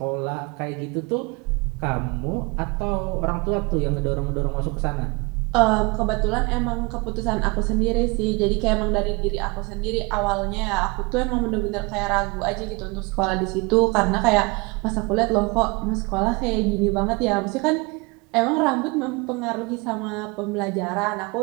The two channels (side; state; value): left; quieter; 27.5 dB